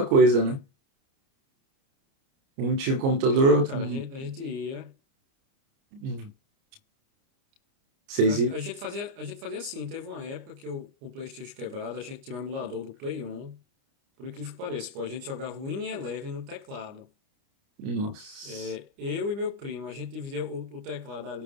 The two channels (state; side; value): late; left; 29 ms